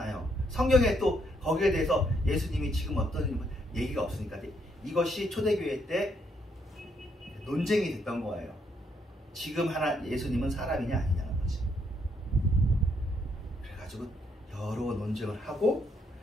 성경에 또 거기에 대해서 예수님이 지금 어떤 얘기가 없으니까 이것이 초대교회 때 논쟁이 됐던 거예요. 지금 예수님은 사람이냐 아니냐는 거지. 그래가지고 여러 논쟁을 하고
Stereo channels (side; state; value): both; normal; correlation 0.74